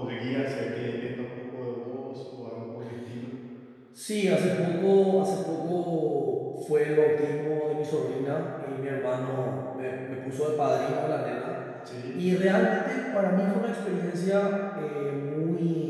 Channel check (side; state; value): both; identical; correlation 1.00